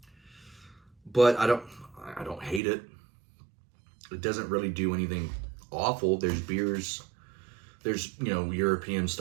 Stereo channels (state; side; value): drops out; left; at 2.6 s